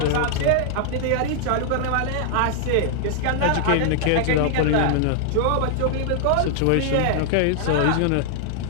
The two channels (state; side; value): different; both; correlation -0.01